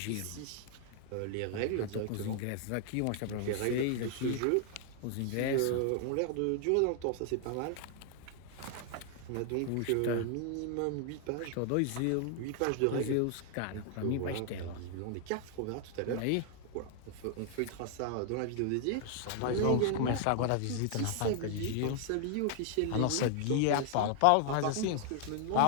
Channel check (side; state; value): both; different; correlation 0.00